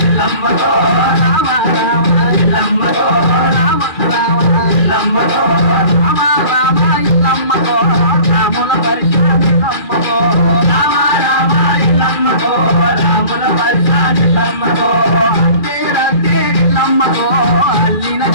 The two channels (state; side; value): late; right; 2.4 ms